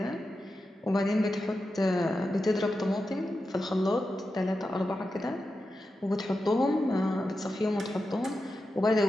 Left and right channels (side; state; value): both; normal; correlation 0.90